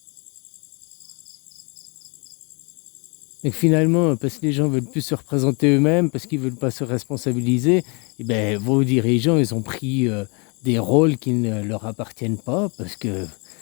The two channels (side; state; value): right; quieter; 32.5 dB